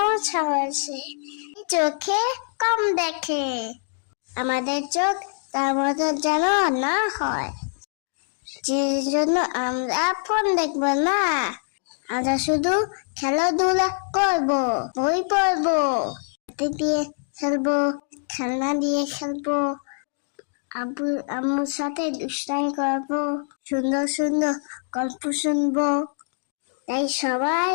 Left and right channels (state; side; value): silent; right; digital silence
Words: হয়েছে, চোখে কম দেখে। আমাদের চোখ তার মতো যেন না হয়, যে জন্য আমরা ফোন দেখবো না, আমরা শুধু খেলাধুলা করবো, বই পড়বো, হাতে দিয়ে খেলবো, খেলনা দিয়ে খেলবো, আব্বু আম্মুর সাথে দুষ্টামি করবো, সুন্দর সুন্দর গল্প শুনবো। তাই সবাই